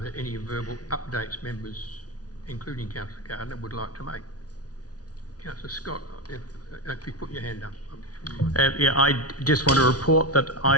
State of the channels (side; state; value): right; late; 0.68 ms